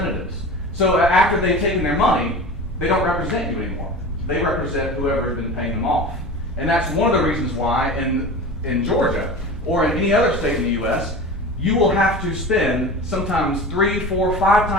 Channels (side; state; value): both; normal; correlation 0.33